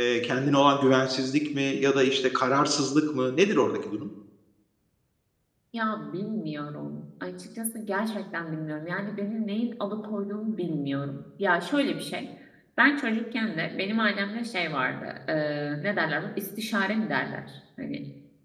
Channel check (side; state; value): both; identical; correlation 1.00